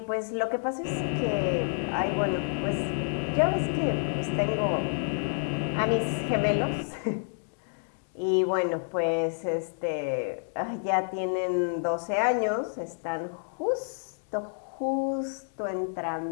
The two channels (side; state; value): right; silent; digital silence